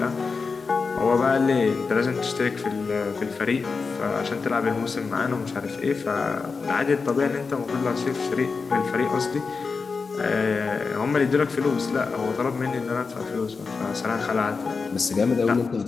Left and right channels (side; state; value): right; quieter; 4.7 dB